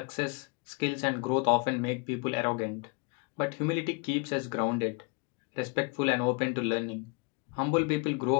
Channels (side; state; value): right; quieter; 31.1 dB